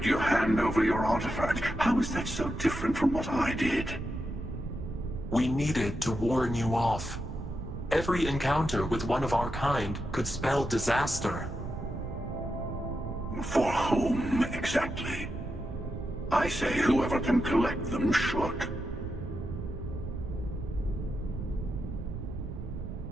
you hand over your artifact. How is that so different from what I did? We needed to warn you off. Every encounter with one of our kind could spell disaster. For whom, exactly? I say whoever can collect them should.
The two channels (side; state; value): right; noise; rumble, 8 dB below the sound